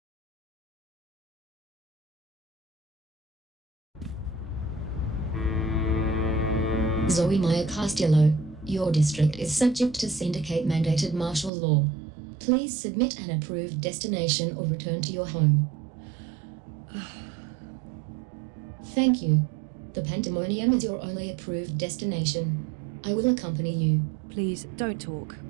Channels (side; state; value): left; drops out; at 11.5 s